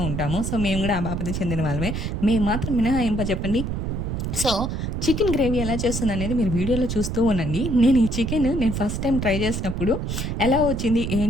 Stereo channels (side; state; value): right; noise; rumble, 3 dB below the sound